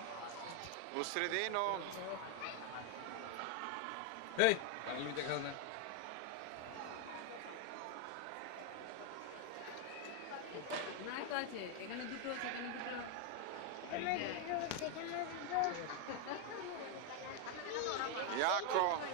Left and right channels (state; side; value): different; both; correlation 0.01